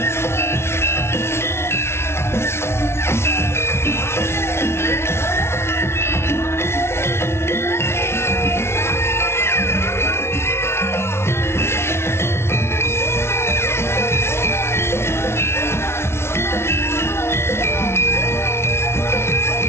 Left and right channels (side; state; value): right; late; 0.12 ms